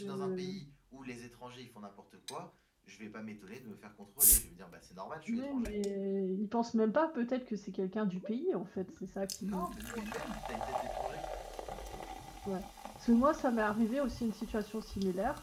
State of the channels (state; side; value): identical; both; correlation 1.00